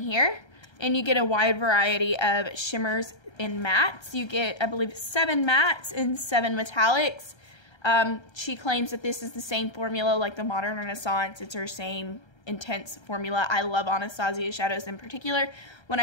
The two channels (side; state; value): right; late; 1.3 ms